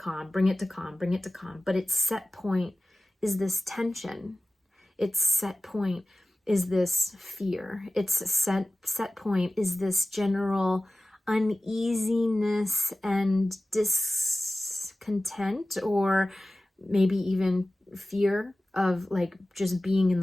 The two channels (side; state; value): both; normal; correlation 0.96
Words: bring it to calm, bring it to calm. But its set point is this tension. Its set point is this fear. Its set point is this general uneasiness and discontent, or maybe even fear of like just being in